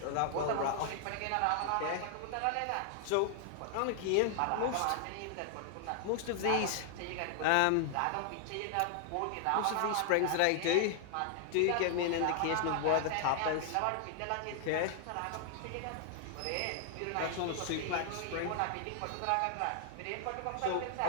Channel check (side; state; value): both; different; correlation 0.00